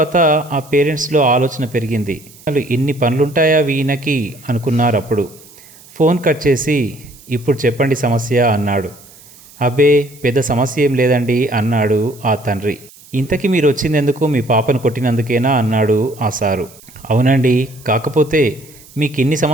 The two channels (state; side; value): noise; right; hiss, 23 dB below the sound